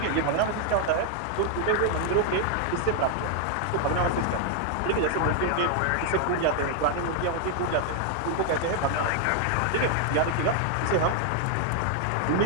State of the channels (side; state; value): both; different; correlation 0.00